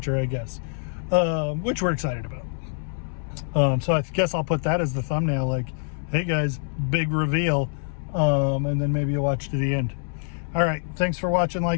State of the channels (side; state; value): right; silent; 62 dB below the other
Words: I guess, which we're excited about. So I guess I'll put that as the thumbnail, like, hey guys, big reveal. And then maybe you'll watch to the end. All right, thanks for watching,